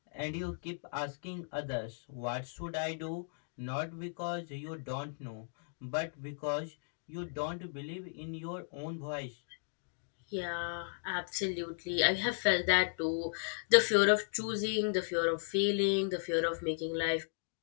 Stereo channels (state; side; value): silent; right; digital silence